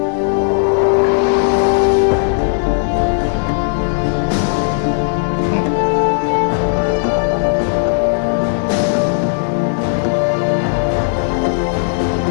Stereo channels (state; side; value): silent; right; 64 dB below the other